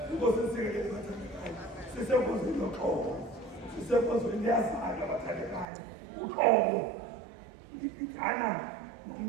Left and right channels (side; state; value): left; drops out; at 5.7 s